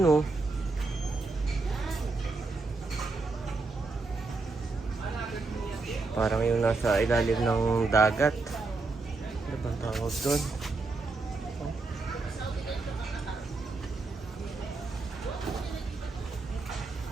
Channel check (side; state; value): left; quieter; 3.7 dB